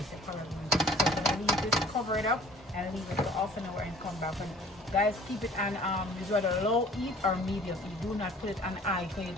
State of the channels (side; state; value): both; normal; correlation 0.50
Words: the color green. So I'm gonna leave this, cover it up, and leave it for half an hour and come back. And guys, keep it on is whether low heat or medium heat. Do not put it on high because you